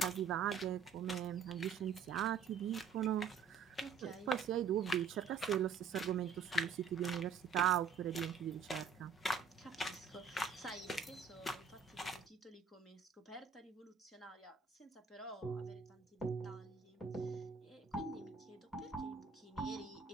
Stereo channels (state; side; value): quieter; left; 5.9 dB